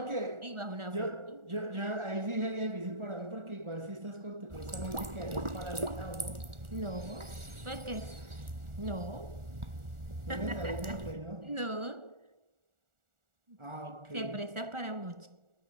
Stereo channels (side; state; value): left; late; 1.4 ms